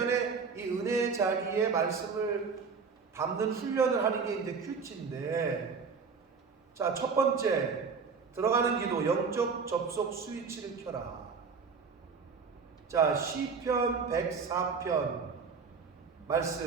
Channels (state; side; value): quieter; left; 5.4 dB